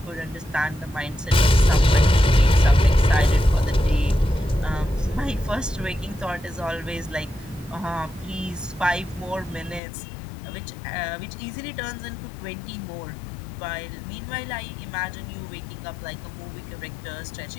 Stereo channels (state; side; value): drops out; right; at 9.8 s